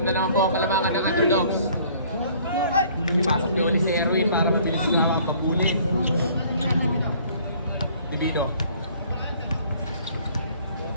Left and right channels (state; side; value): inverted; both; correlation -0.56